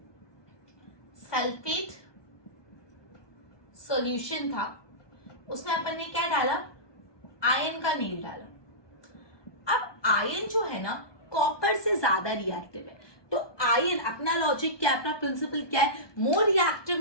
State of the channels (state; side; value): late; right; 1.2 ms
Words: सल्फेट सॉल्यूशन था, उसमें अपन ने क्या डाला, आयरन का नील डाला. अब आयरन जो है ना कॉपर से ज्यादा रिएक्टिव है. तो आयरन, अपना लॉजिक क्या है, अपना प्रिंसिपल क्या है, more reactive